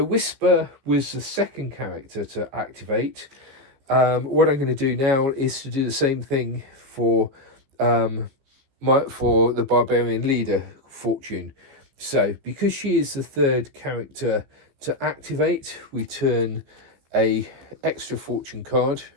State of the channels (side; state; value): left; late; 15 ms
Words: Whisper was the second character to activate. What I'm going to do now is to do the same thing for the Barbarian leader, fortune. So because she is the third character to activate, we turn a extra fortune card